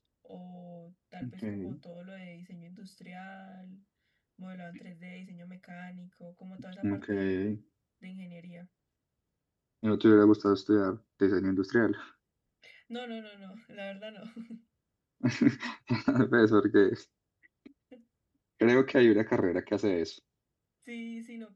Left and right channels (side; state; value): both; identical; correlation 1.00